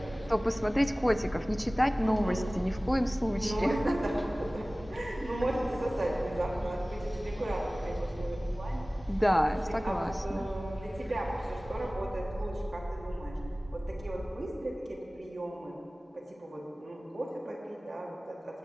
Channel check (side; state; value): both; normal; correlation 0.98